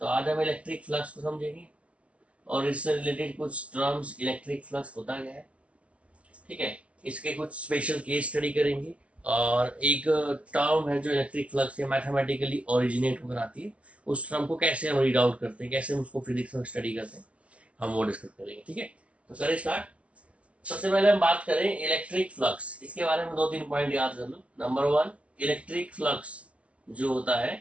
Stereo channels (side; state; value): left; late; 0.063 ms